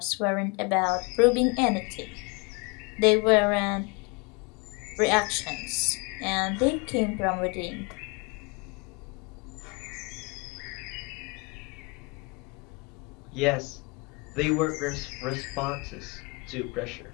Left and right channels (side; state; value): right; quieter; 29.9 dB